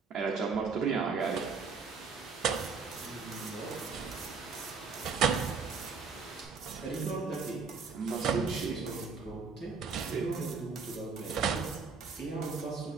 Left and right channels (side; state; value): left; quieter; 5.0 dB